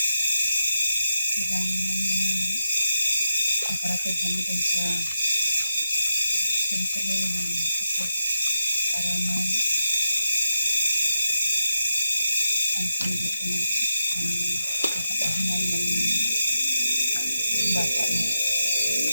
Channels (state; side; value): inverted; both; correlation -0.86